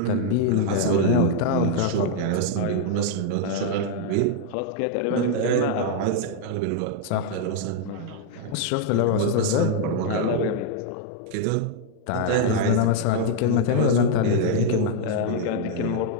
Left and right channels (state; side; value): different; both; correlation 0.00